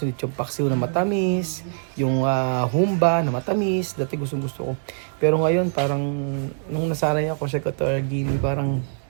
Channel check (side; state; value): left; silent; 63 dB below the other